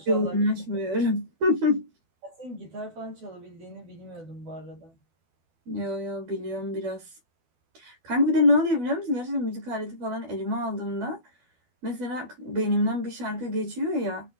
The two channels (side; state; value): left; late; 12 ms